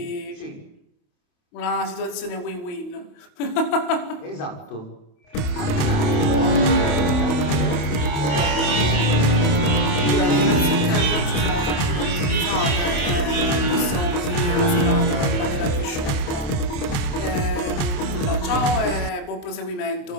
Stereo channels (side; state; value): right; late; 28 ms